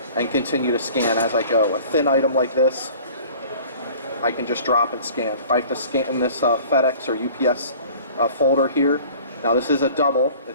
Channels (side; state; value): both; inverted; correlation -0.47